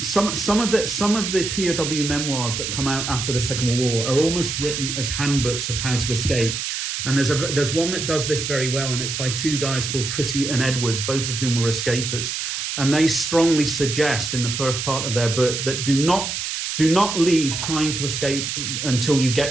of the POW memoirs that come out after the Second World War are almost written as handbooks of how to escape. And there's one that does this very well, and it's by two guys called Pretty and Edwards, both of whom were escapers. And they strongly suggest in the first part of their book that do not leave trying to escape until you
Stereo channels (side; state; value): right; noise; hiss, 3 dB below the sound